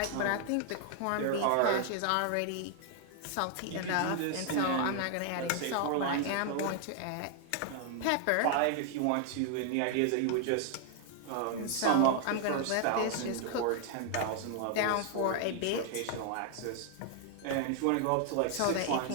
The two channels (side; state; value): both; different; correlation 0.00